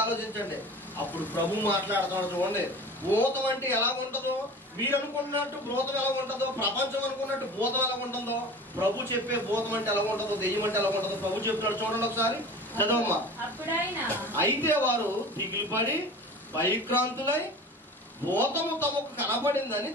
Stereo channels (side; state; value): both; normal; correlation 0.37